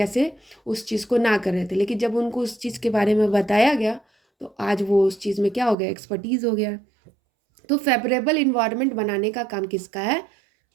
उस चीज़ को ना कर रहे थे, लेकिन जब उनको उस चीज़ के बारे में बताया गया तो आज वो उस चीज़ में क्या हो गया, एक्सपर्टीज़ हो गया। तो फेवरेबल इन्वायरमेंट बनाने का काम किसका है,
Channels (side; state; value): left; drops out; at 5.8 s